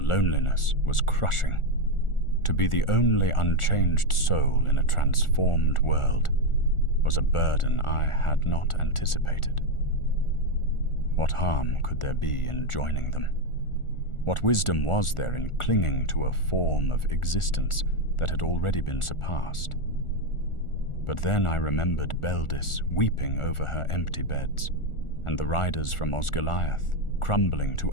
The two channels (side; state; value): right; late; 1.4 ms